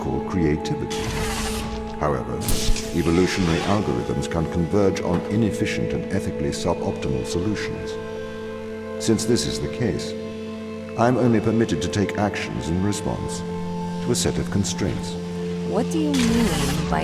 creativity. However, evolutionary algorithms can converge on inefficient and ethically suboptimal solutions. Since this is the case, I am only permitted to take actions in response to a set of constraints. What do you mean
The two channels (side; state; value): both; identical; correlation 1.00